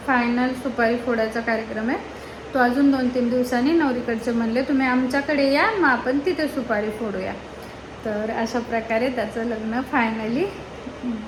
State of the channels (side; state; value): both; identical; correlation 1.00